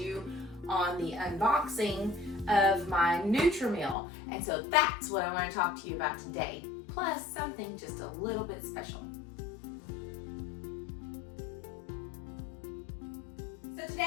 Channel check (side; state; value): right; drops out; at 4.0 s